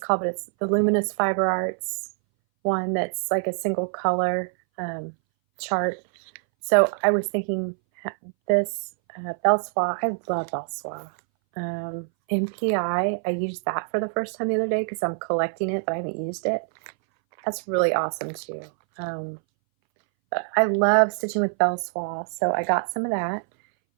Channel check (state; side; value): silent; left; 61 dB below the other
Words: but it's the Luminous Fiber Arts one that's like a single color chart. So I was thinking this Belsois, I love Belsois. MPI, I used that for the first time the other day because I'm collecting it, but I haven't used it. That's really awesome too. But I love stitching with Belsois, so I got some of that.